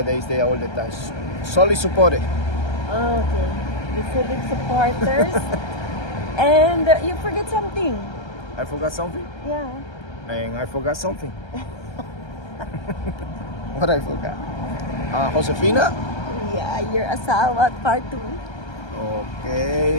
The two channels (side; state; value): right; late; 1.3 ms